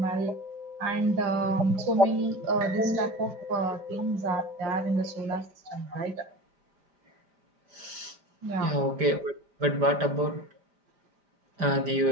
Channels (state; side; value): late; left; 5.0 ms